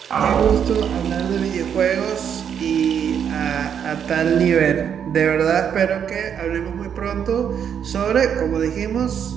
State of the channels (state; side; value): quieter; left; 8.2 dB